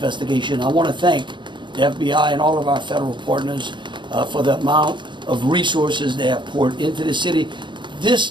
I want to thank the FBI and all of our federal partners for the amount of resources they have poured into the city. This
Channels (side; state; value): left; late; 0.23 ms